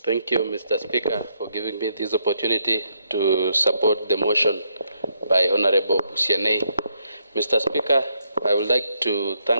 Thank you, Mr. Speaker, for giving me this opportunity to support the motion by Honorable Busianei. Mr. Speaker, I would like to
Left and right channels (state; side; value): inverted; both; correlation -0.76